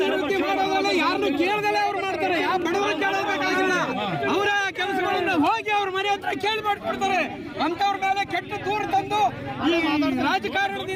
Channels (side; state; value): both; identical; correlation 1.00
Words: ಮಾಡೋದಲ್ಲ, ಯಾರನ್ನು ಕೇಳದಲ್ಲೇ ಅವ್ರು ಮಾಡ್ತಾರೆ. ಯಾವ ಬಡವರು ಕೇಳಬೇಕಾಗಿಲ್ಲ. ಅವರ ಕೆಲಸಗಳನ್ನ ಹೋಗಿ ಅವ್ರ ಮನೆ ಹತ್ರ ಕೇಳಿ ಮಾಡ್ಕೊಡ್ತಾರೆ. ಅಂತವ್ರ ಮೇಲೆ ಕೆಟ್ಟ ದೂರ ತಂದು ಈ